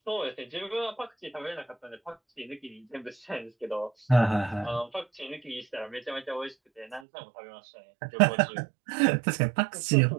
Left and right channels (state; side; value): drops out; left; at 7.0 s